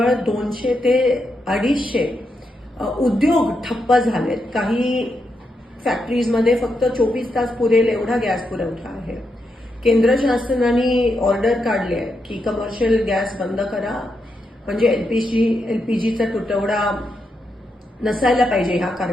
200 ते 250 उद्योग ठप्प झालेत. काही फॅक्टरीजमध्ये फक्त 24 तास पुरेल एवढा गॅस पुरवठा आहे. केंद्र शासनाने ऑर्डर काढली आहे की कमर्शियल गॅस बंद करा, म्हणजे एलपीजीचा तुटवडा नसायला पाहिजे ह्या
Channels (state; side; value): normal; both; correlation 0.83